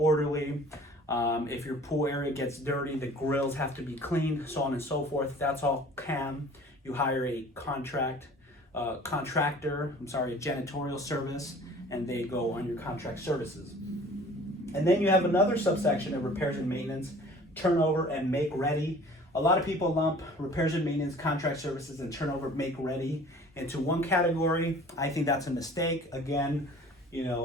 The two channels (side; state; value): both; normal; correlation 0.48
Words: If your pool area gets dirty, the grills have to be cleaned, so on and so forth. That's all CAM. You hire a contractor, a janitorial service, and they go on your contract services. And then you have another subsection of repairs and maintenance, turnover and make ready. A lot of people lump repairs and maintenance, contract services, and turnover make ready into one category. I think that's a mistake. Again, you